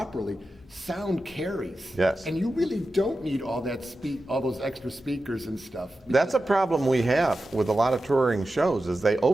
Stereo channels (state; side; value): normal; both; correlation 0.92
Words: sound carries. Yes. And you really don't need all those extra speakers and stuff. That's a problem we have with a lot of touring shows is they